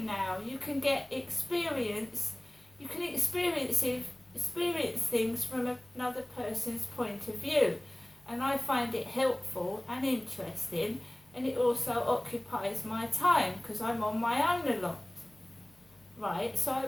now? You can get experience, you can experience things from another person's point of view, and I find it helpful and interesting, and it also occupies my time because I'm on my own a lot. Right, so I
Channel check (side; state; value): left; noise; hum, 30 dB below the sound